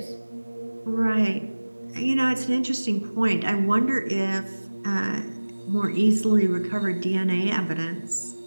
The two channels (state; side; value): inverted; both; correlation -1.00